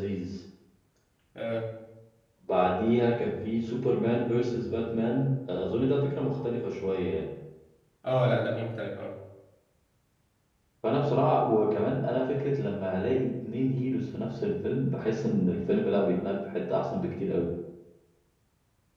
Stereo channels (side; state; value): both; identical; correlation 1.00